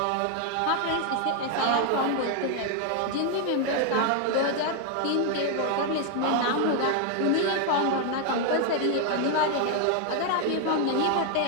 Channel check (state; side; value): different; both; correlation 0.00